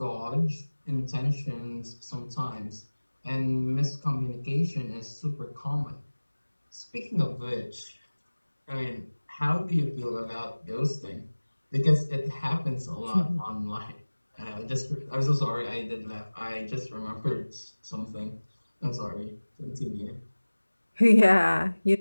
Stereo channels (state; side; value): inverted; both; correlation -1.00